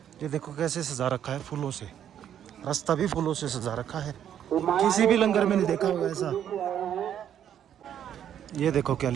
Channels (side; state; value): left; quieter; 9.8 dB